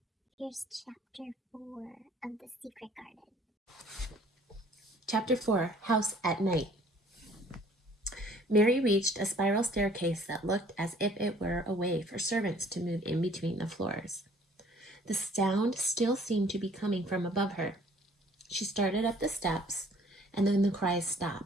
Here's chapter 4 of The Secret Garden. Chapter 4, House at Night. Mary reached a spiral staircase that looked as if it were a way for servants to move in between the floors. The sound still seemed to be coming from above her. She started up the steps, and then the cries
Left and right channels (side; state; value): both; normal; correlation 0.56